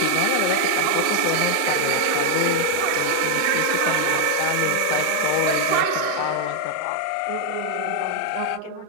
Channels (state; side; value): different; both; correlation 0.00